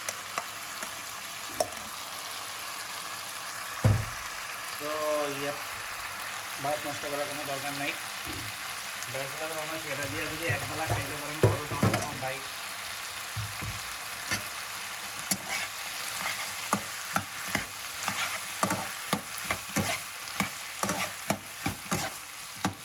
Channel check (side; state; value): both; identical; correlation 1.00